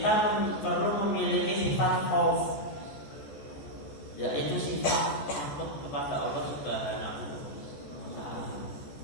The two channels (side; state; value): right; late; 14 ms